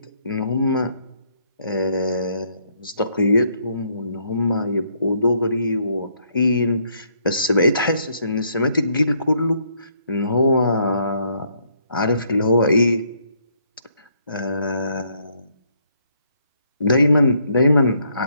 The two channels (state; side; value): inverted; both; correlation -0.70